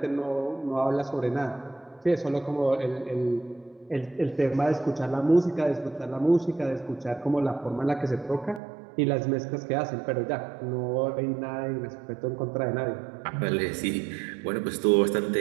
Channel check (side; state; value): left; drops out; at 8.6 s